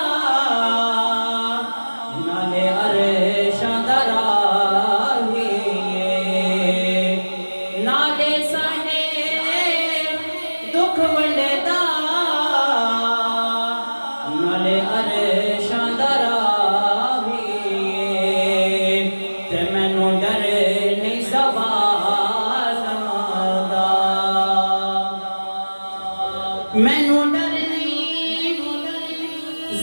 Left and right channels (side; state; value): both; inverted; correlation -1.00